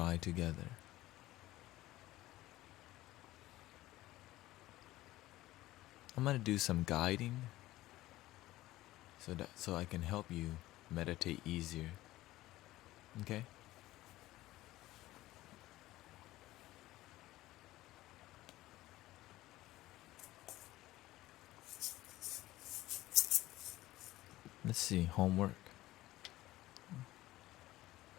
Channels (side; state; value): right; quieter; 16.7 dB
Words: together. I'm gonna do some guiding so I can help you meditate easier. Okay? Let's see, homework.